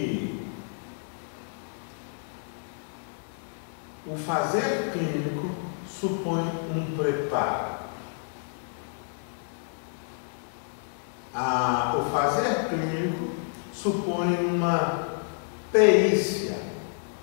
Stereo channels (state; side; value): silent; right; 59 dB below the other